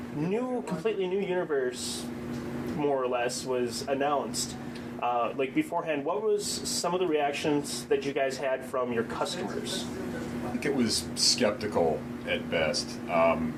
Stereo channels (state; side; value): identical; both; correlation 1.00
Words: completely new universe, more or less, was announced. Like beforehand, what was some of the reactions that you guys had from your customers? I think it was skeptical at best.